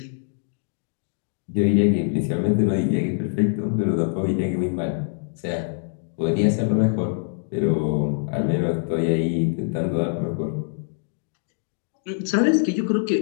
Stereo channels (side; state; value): right; silent; digital silence